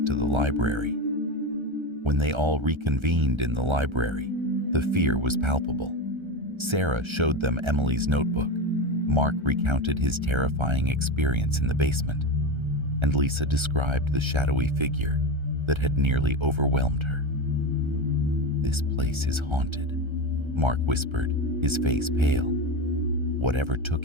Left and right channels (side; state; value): left; late; 1.3 ms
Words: to the library. When they all reconvened in the library, the fear was palpable. Sarah showed them Emily's notebook. Mark recounted his terrifying experience in the basement, and Lisa described the shadowy figure that had nearly overwhelmed her. "This place is haunted," Mark whispered, his face pale. "Whatever